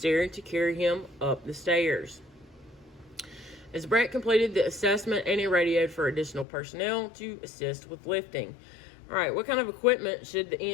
to carry him up the stairs. As Brett completed the assessment, Annie radioed for additional personnel to assist with lifting. All right, what kind of equipment should the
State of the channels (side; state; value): right; drops out; at 6.5 s